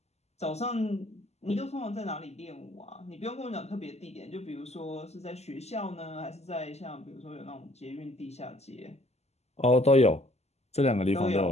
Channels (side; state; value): right; late; 0.31 ms